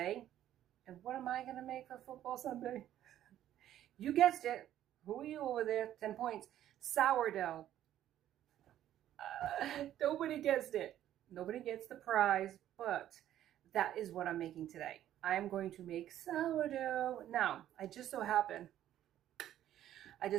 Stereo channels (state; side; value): quieter; left; 11.9 dB